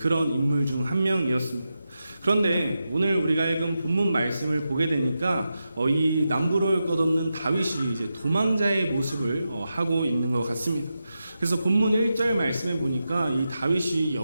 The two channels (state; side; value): inverted; both; correlation -0.89